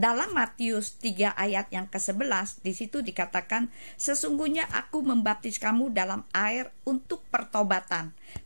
Matius 3 ayat yang ke-11, di situ dikatakan, sesungguhnya aku membaptis kamu dalam air untuk pertobatan,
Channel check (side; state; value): both; inverted; correlation -1.00